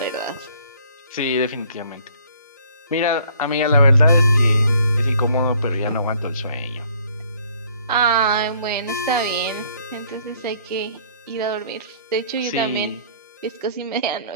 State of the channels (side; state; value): both; inverted; correlation -0.59